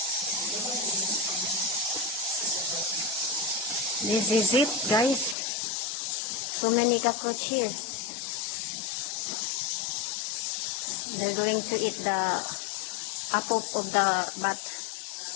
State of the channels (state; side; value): drops out; right; at 5.4 s